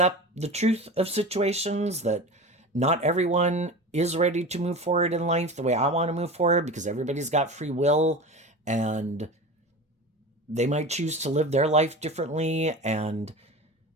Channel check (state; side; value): normal; both; correlation 0.31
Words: the truth of situations, that not everyone is ready to move forward in life the way I want to move forward, because everybody's got free will and they might choose to live their life differently. And